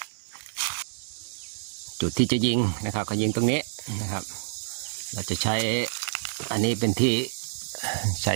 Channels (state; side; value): silent; left; digital silence